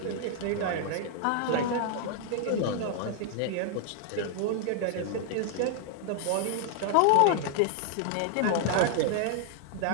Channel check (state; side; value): different; both; correlation -0.01